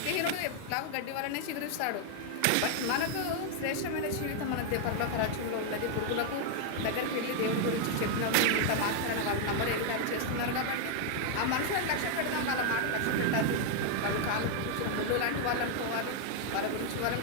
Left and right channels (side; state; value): both; different; correlation 0.00